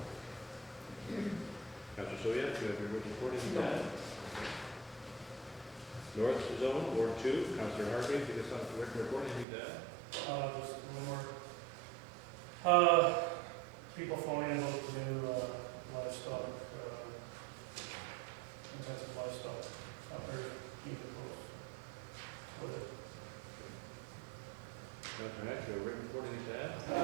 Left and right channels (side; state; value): left; drops out; at 9.5 s